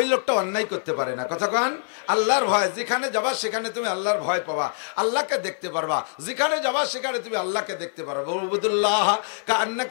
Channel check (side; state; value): right; silent; 62 dB below the other